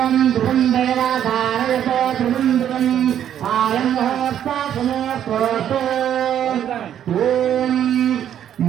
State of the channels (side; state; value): left; quieter; 10.1 dB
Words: ధ్రువం దేవాధారయతో ధ్రువం ధ్రువం ఆయం ముహూర్త సుముహూర్తోస్తు. ఓం